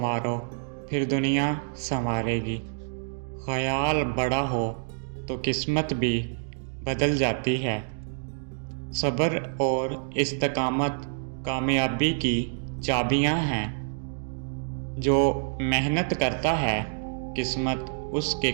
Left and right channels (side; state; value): left; silent; digital silence